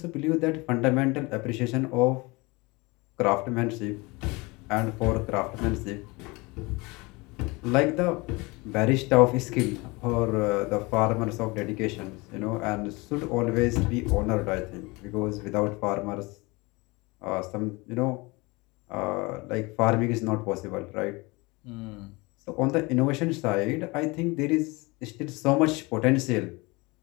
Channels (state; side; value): quieter; right; 25.1 dB